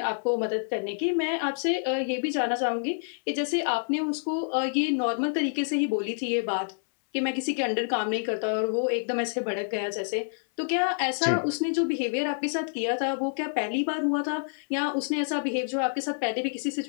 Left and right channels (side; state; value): right; silent; 60 dB below the other